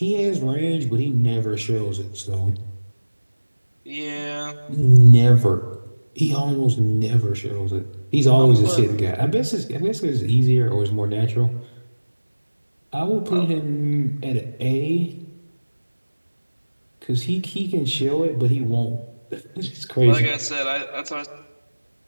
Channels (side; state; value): both; inverted; correlation -1.00